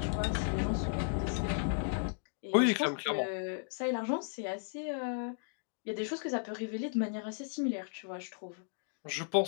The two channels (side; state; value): right; silent; digital silence